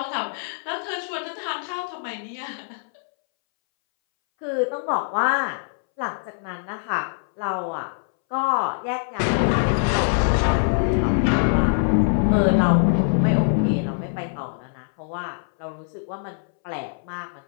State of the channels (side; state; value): right; silent; 63 dB below the other